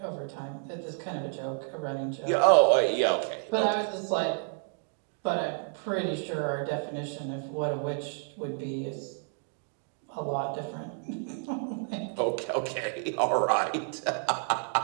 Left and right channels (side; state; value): left; silent; 58 dB below the other